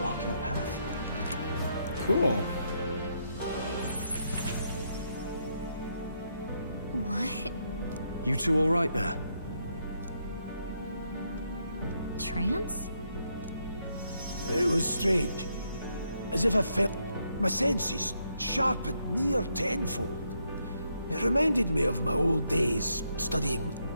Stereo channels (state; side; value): inverted; both; correlation -0.77